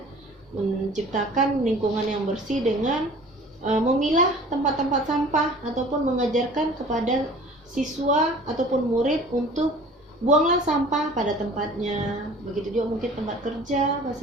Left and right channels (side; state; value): both; normal; correlation 0.46